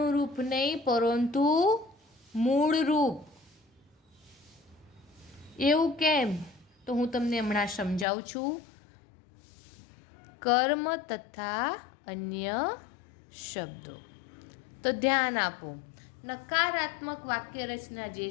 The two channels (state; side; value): drops out; right; at 8.1 s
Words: રૂપ નહીં પરંતુ મૂળ રૂપ. એવું કેમ? તો હું તમને હમણાં સમજાવું છું. કર્મ તથા અન્ય શબ્દો. તો ધ્યાન આપો. નકારાત્મક વાક્ય રચના જે